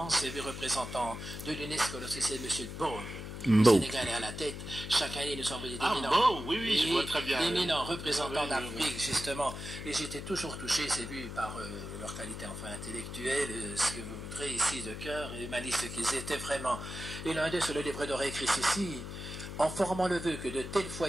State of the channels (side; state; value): left; noise; hum, 8 dB below the sound